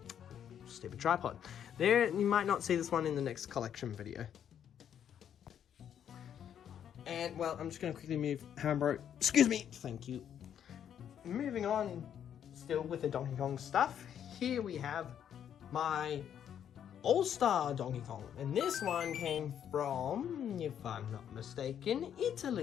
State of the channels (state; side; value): quieter; right; 9.2 dB